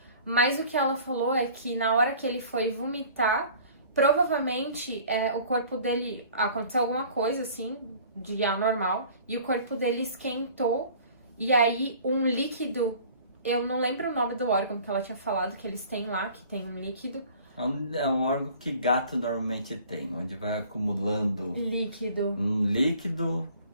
Mas o que ela falou é que na hora que ele foi vomitar, provavelmente o corpo dele, aconteceu alguma coisa assim de anormal e o corpo dele esquentou. E aí, um líquido, eu não lembro o nome do órgão que ela tinha falado, que eles têm lá, que tem um líquido. É um órgão que gato normalmente tem, onde vai acumulando um líquido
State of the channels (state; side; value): inverted; both; correlation -0.49